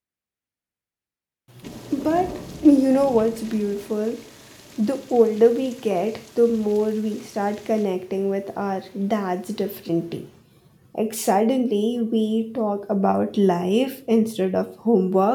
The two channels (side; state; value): both; identical; correlation 1.00